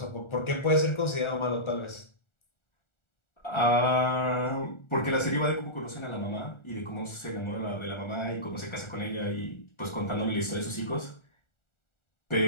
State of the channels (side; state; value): right; late; 1.4 ms